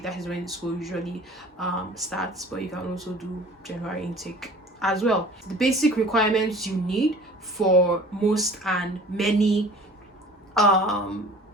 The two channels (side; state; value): both; normal; correlation 0.46